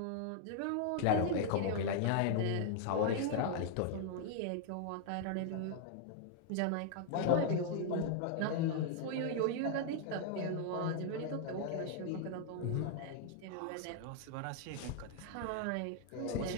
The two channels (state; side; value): different; both; correlation 0.00